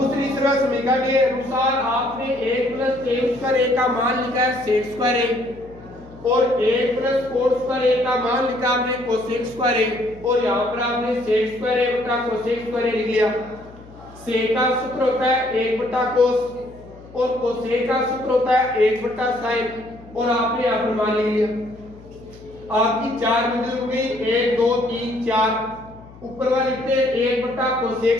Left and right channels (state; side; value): noise; left; hum, 21 dB below the sound